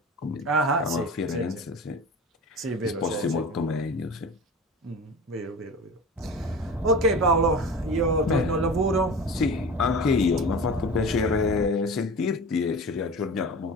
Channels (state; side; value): normal; both; correlation 0.33